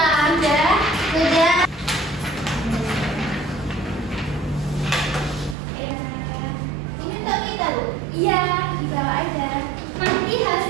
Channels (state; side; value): drops out; left; at 5.6 s